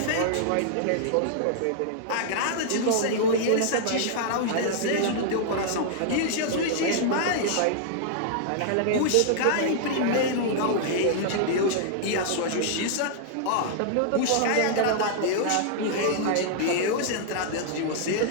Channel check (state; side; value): different; both; correlation -0.01